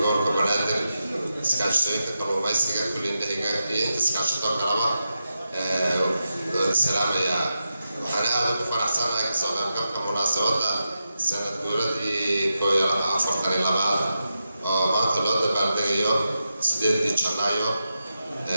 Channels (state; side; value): inverted; both; correlation -0.88